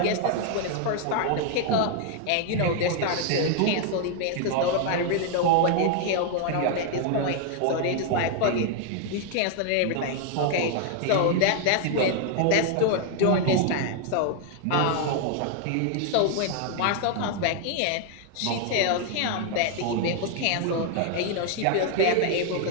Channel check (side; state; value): both; different; correlation 0.00